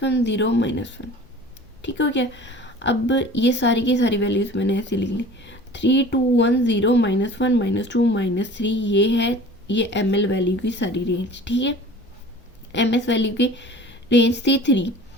0 -1, ठीक हो गया। अब ये सारी की सारी वैल्यूज़ मैंने ऐसे लिख ली। 3 2 1 0 -1 -2 -3, ये है ये ML वैल्यू की सारी रेंज, ठीक है। MS वैल्यू की रेंज थी 3,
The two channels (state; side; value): normal; both; correlation 0.43